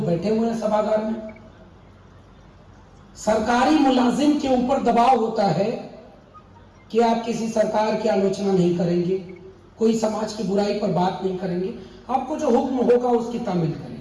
बैठे हुए हैं सभागार में। सरकारी मुलाजिम के ऊपर दबाव होता है कि आप किसी सरकार की आलोचना नहीं करेंगे, कोई समाज की बुराई पर बात नहीं करेंगे, आपको जो हुक्म होगा उसकी तामील करेंगे।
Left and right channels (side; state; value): both; identical; correlation 1.00